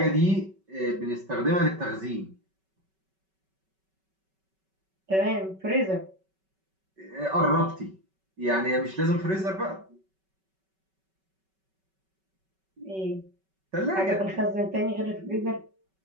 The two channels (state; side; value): late; left; 5.3 ms